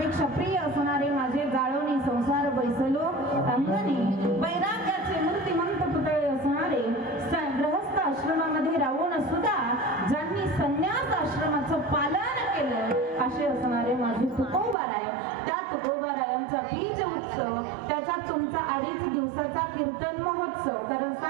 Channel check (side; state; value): left; drops out; at 14.8 s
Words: प्रिय असणारे माझे जाळवणी संसार बैसलो अंगणी वैराग्याचे मूर्तिमंत पुतळे असणारे गृहस्थ आश्रमामध्ये राहून सुद्धा ज्यांनी संन्यास आश्रमाचं पालन केलं असे असणारे माझे तुकोबाराय. त्या तुकोबारायांचा बीज उत्सव त्याच्यात तुमचा 2.5 दिवसाचा कीर्तन महोत्सव कारण